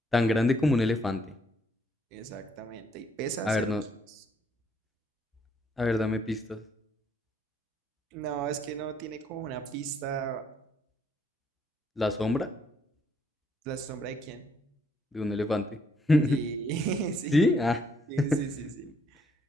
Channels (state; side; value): normal; both; correlation 0.69